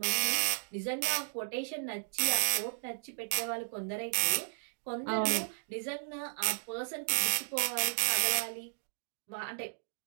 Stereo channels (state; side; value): silent; left; digital silence